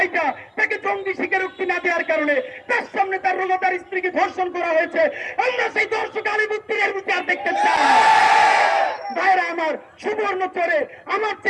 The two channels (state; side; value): identical; both; correlation 1.00